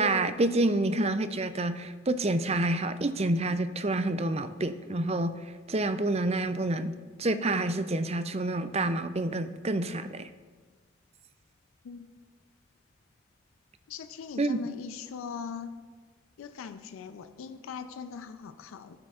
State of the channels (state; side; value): normal; both; correlation 0.47